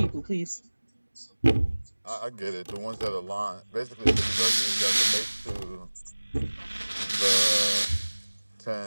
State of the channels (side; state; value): both; inverted; correlation -1.00